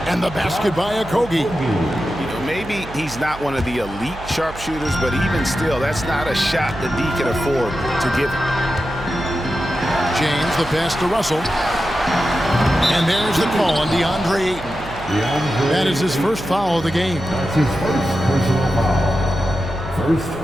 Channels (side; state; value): right; noise; hum, 14 dB below the sound